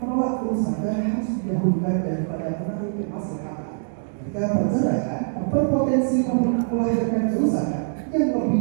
Menolak kerusakan harus didahulukan daripada menarik kemaslahatan. Jika perceraian berpotensi melahirkan kerusakan yang lebih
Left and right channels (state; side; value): silent; left; digital silence